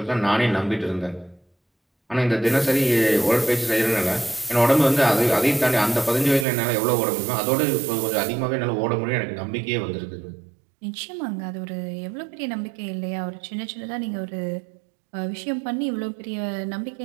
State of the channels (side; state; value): left; drops out; at 6.5 s